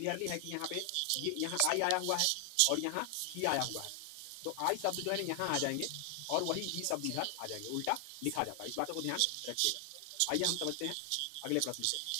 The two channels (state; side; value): different; both; correlation 0.00